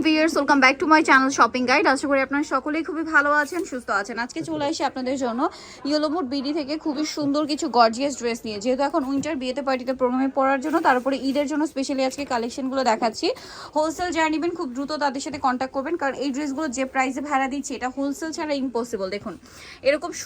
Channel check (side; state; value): both; identical; correlation 1.00